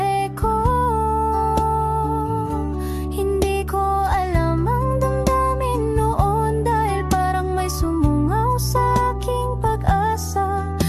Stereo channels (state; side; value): identical; both; correlation 1.00